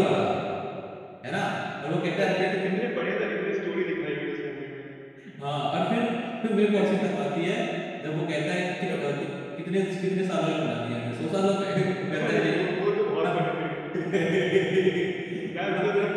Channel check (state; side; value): identical; both; correlation 1.00